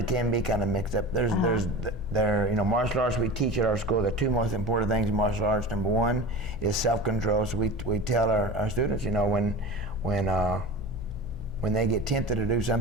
can be kind of mixed up. There's martial arts we teach at our school. The two most important things in martial arts. Number one is self-control. So we tell our students, when they get tempted to do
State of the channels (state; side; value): noise; left; hum, 15 dB below the sound